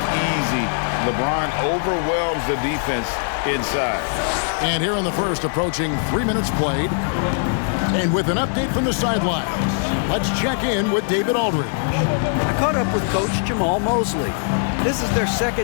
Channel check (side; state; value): right; silent; 65 dB below the other